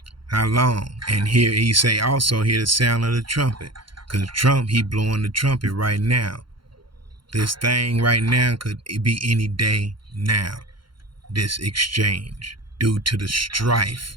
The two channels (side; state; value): left; late; 0.73 ms